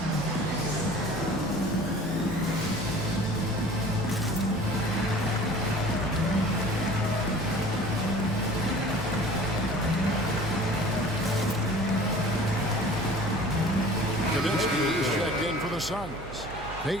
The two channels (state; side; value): noise; right; hum, 13 dB below the sound